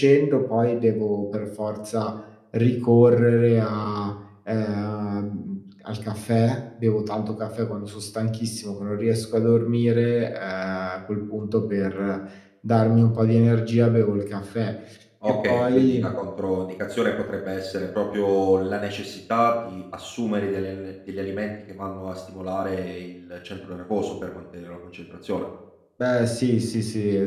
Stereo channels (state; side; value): identical; both; correlation 1.00